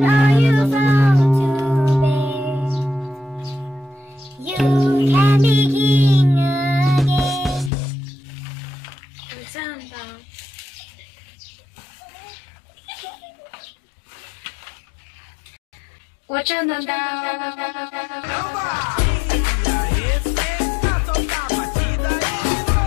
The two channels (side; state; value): right; drops out; at 7.7 s